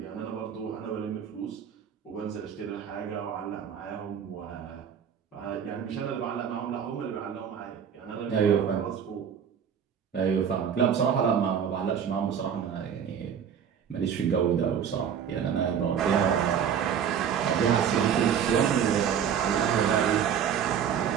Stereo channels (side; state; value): left; quieter; 8.1 dB